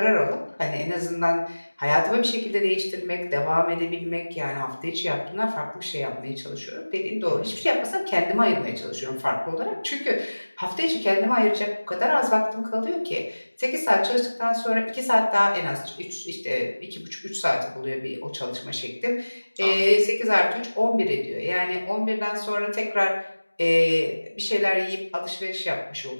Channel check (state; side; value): inverted; both; correlation -1.00